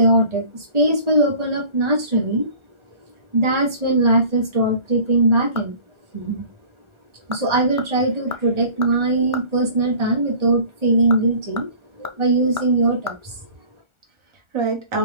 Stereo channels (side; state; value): left; late; 1.4 ms